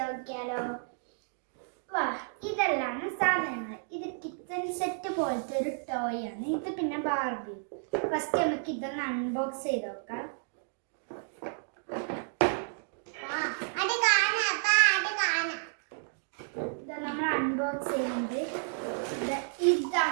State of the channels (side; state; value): left; silent; digital silence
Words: നോക്കിയാലോ? വാ, ഇതെല്ലാം സാധനങ്ങൾ. ഇത് കിച്ചൺ സെറ്റ് പോലത്തെ ഒരു ടോയ് ആണ്. ഇത് പിന്നെ ബാർബി. ഫസ്റ്റ് നമുക്ക് ഇതൊന്ന് അൺബോക്സ് ചെയ്ത് നോക്കാം. ഇത് നമ്മൾ അൺബോക്സ് ചെയ്യുന്നത്